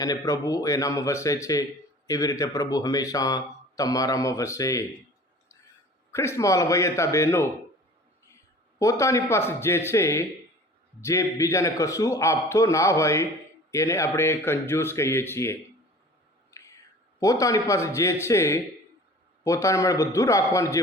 અને પ્રભુ એનામાં વસે છે, એવી રીતે પ્રભુ હંમેશા તમારામાં વસે. ખ્રિસ્તમાં વયતા બહેનો, પોતાની પાસે જે છે, જે બીજાને કશું આપતો ના હોય એને આપણે કંજૂસ કહીએ છીએ. પોતાની પાસે જે છે, પોતાના માટે બધું રાખવાનું, જે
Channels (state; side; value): normal; both; correlation 0.44